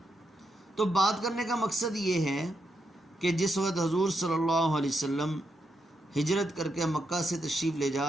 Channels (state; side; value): normal; both; correlation 0.82